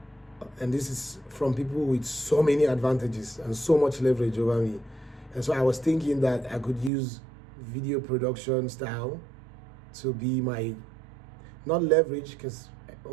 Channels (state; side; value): drops out; left; at 6.9 s